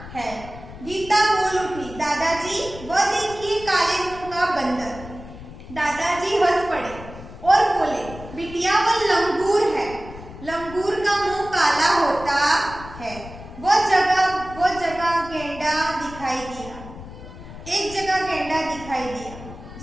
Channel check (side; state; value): left; noise; rumble, 14 dB below the sound